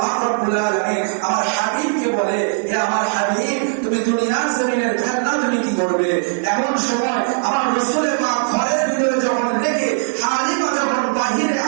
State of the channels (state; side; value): silent; left; digital silence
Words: পাক রব্বুল আলামিন আমার হাবিবকে বলে, হে আমার হাবিব তুমি দুনিয়ার জমিনের খেলনা তুমি কি করবে? এমন সময় আমার রাসূলের পাক ঘরের ভিতরে যখন রেখে হালিমা যখন বাহিরে